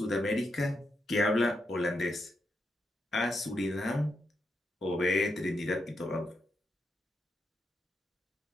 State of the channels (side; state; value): both; normal; correlation 0.83